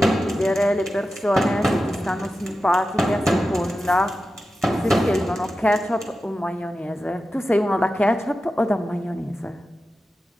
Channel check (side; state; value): both; normal; correlation 0.92